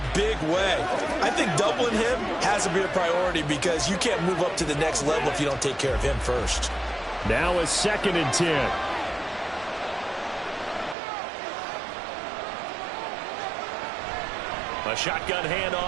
big way. I think doubling him has to be a priority because you can't move up to the next level if you don't take care of him first. Now a 2nd and 10. A shotgun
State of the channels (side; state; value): left; drops out; at 11.0 s